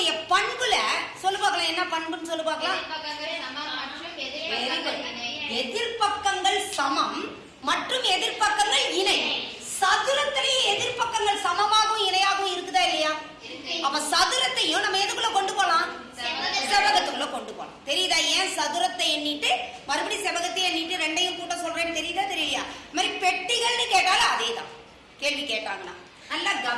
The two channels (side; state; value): both; identical; correlation 1.00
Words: பண்புல சொல்லு பார்க்கலாம். என்ன பண்புன்னு சொல்லு பார்க்கலாம். எதிர்பக்கங்கள் சமம் மற்றும் எதிர்பக்கங்கள் இணை. சதுரத்திலேயே எதிர்பக்கங்கள் சமமாகவும் இணையாகவும் இருக்குதா இல்லையா? அப்ப சதுரத்தையும் நம்ம எதுக்குள்ள கொண்டு போலாம்? செவ்வகத்துக்குள்ள கொண்டு போலாம். தெரியுதா? ஏன் சதுரத்தை எண்ணிட்டு மறுபடியும் செவ்வகத்தை எண்ணிட்டு ரெண்டையும் கூட்ட சொல்றேன்னு தெரியுதா தெரியலையா? மாதிரி பெட்டிகள்னு கேட்டாலும் அதே தான். கேள்வி கேட்டாங்கன்னா நல்லா